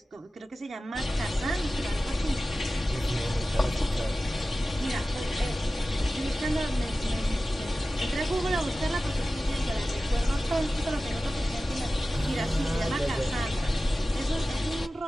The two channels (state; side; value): normal; both; correlation 0.95